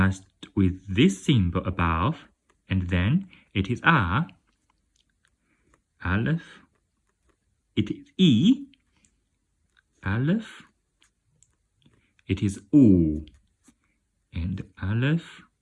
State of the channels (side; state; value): both; identical; correlation 1.00